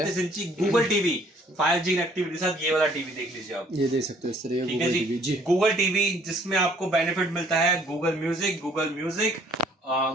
इंची गूगल टीवी 5G कनेक्टिविटी के साथ, ये वाला टीवी देख लीजिए आप, ये देख सकते हो इस तरह। ठीक है जी, गूगल टीवी जिसमें आपको बेनिफिट मिलता है गूगल म्यूजिक,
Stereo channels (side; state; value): both; normal; correlation 0.60